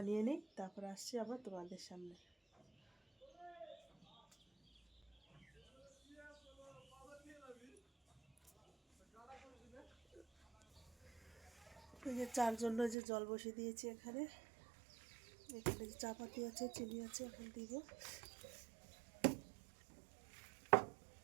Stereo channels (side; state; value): left; drops out; at 13.0 s